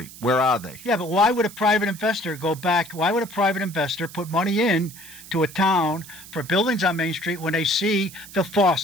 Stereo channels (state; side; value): noise; right; hiss, 17 dB below the sound